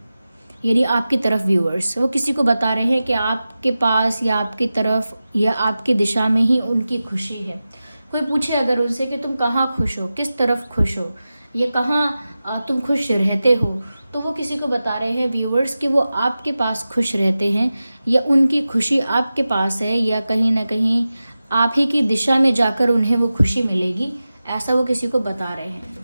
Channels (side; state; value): both; inverted; correlation -0.94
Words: यानी आपकी तरफ। व्यूअर्स वो किसी को बता रहे हैं कि आपके पास या आपकी तरफ या आपकी दिशा में ही उनकी खुशी है। कोई पूछे अगर उनसे कि तुम कहाँ खुश हो, किस तरफ खुश हो, या कहाँ तुम खुश रहते हो, तो वो किसी को बता रहे हैं व्यूअर्स कि वो आपके पास खुश रहते हैं, या उनकी खुशी आपके पास है, या कहीं ना कहीं आप ही की दिशा में जाकर उन्हें वो खुशी मिलेगी, ऐसा वो किसी को बता रहे हैं।